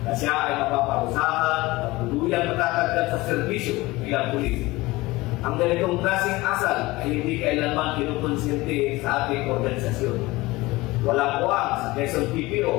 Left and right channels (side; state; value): right; quieter; 20.6 dB